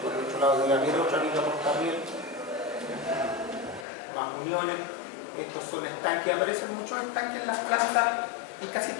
por el otro lado debe haber otra viga portarriel, más uniones. Estos son estanques, aparecen muchos estanques en las plantas, en casi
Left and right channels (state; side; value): drops out; right; at 3.9 s